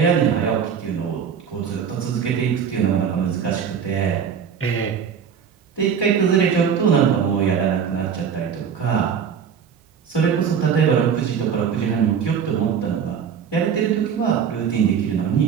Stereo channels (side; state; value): left; quieter; 7.4 dB